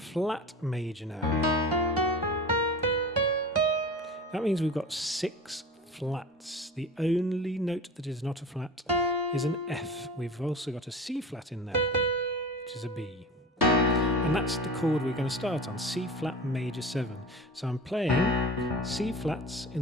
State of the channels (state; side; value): normal; both; correlation 0.34